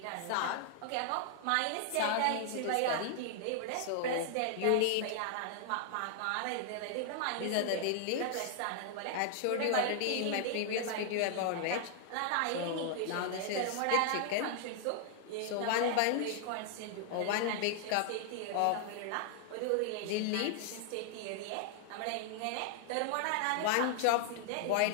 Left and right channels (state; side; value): different; both; correlation -0.01